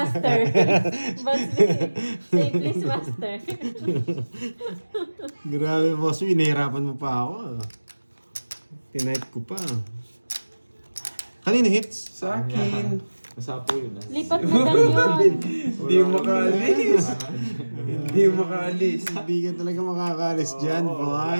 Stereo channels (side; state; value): both; inverted; correlation -1.00